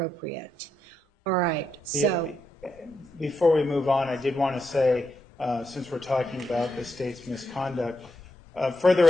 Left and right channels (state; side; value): normal; both; correlation 0.82